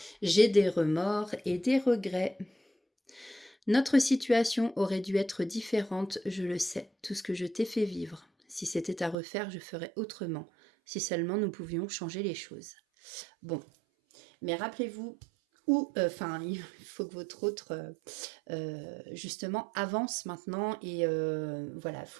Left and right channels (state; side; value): drops out; left; at 9.2 s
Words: J'ai des remords et des regrets. Notre situation aurait dû être différente, je le sais, tout ce que je t'ai fait vivre. Si c'était à refaire, je ferais autrement. Si seulement nous pouvions changer les choses. Bon, mais rappelez-vous, il faut que votre autre, justement, avance maintenant et voilà, il ne